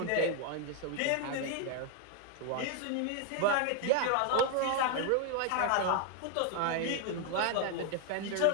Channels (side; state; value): both; different; correlation 0.01